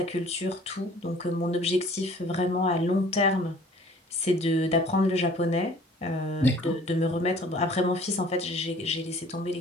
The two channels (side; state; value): both; normal; correlation 0.52